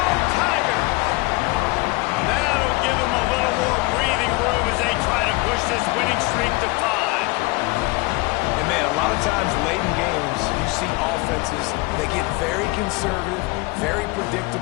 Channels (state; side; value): quieter; right; 24.2 dB